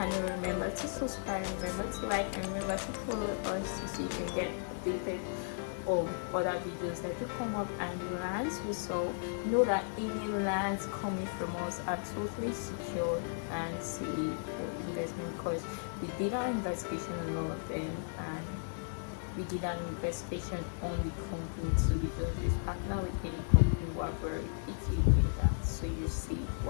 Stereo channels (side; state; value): right; silent; digital silence